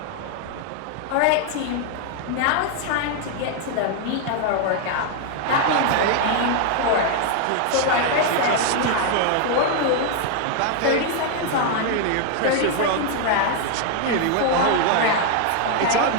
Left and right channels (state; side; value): different; both; correlation 0.00